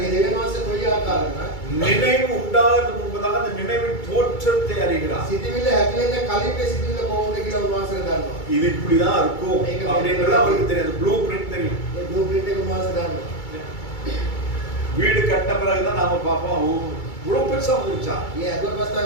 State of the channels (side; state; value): right; late; 2.3 ms